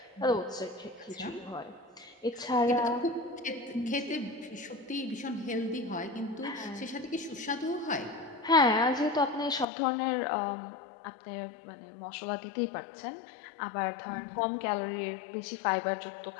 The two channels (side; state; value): right; drops out; at 9.7 s